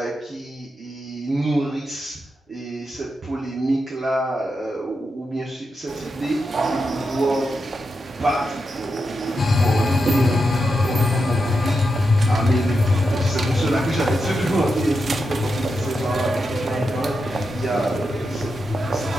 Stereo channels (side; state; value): both; normal; correlation 0.87